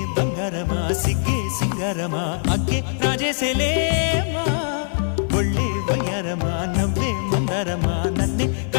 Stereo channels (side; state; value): right; silent; 63 dB below the other